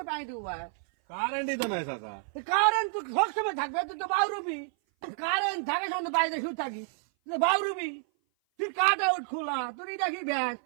পানি দিব ভাই কারেন্টই তো নাই চাচা কারেন্ট তো সবসময় থাকবে তুই তো বাউরুবি কারেন্ট থাকে সঙ্গে বাইরে শুয়ে থাকি বাউরুবি তুই কাট আউট খোলা তোর এটা কি ব্যাস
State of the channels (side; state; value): left; silent; 56 dB below the other